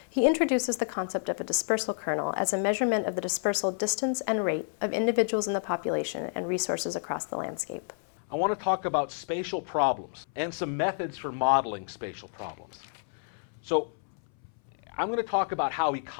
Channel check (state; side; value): silent; right; 58 dB below the other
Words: He introduces the concept of a dispersal kernel as a measurement of the dispersal distance and rate of individuals in the population and resources across the landscape. I want to talk about spatial problems and some methods for modeling spatial problems. So I'm going to talk about how